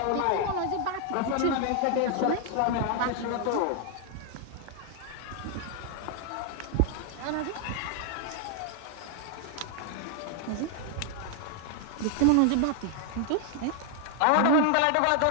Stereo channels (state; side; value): different; both; correlation 0.00